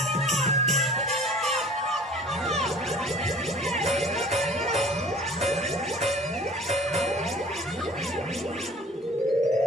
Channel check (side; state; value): both; normal; correlation 0.47